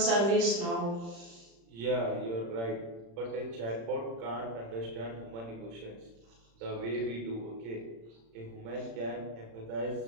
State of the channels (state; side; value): late; left; 35 ms